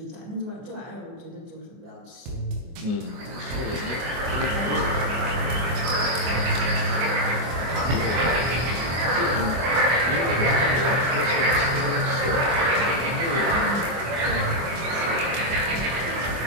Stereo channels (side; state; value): left; late; 24 ms